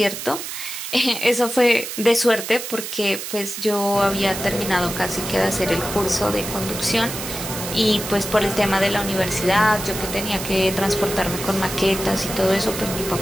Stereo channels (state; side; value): noise; right; hiss, 7 dB below the sound